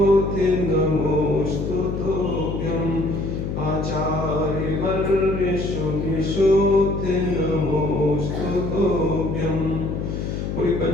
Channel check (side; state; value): left; noise; hum, 3 dB below the sound